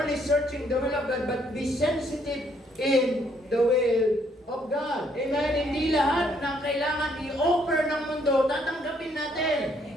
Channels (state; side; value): normal; both; correlation 0.68